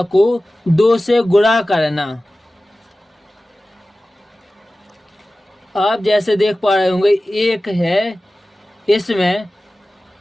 को 2 से गुणा करना। आप जैसे देख पा रहे होंगे 1 है, इसमें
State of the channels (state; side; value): normal; both; correlation 0.96